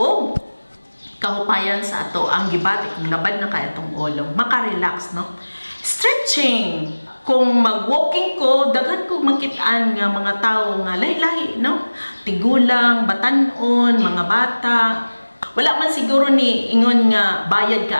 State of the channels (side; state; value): both; inverted; correlation -1.00